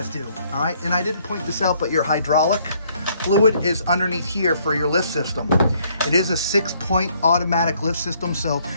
do, all right? And I didn't point this out, but your hydraulic fluid is underneath here for your lift system. It is a 6-point automatic lift system, so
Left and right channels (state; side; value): inverted; both; correlation -0.66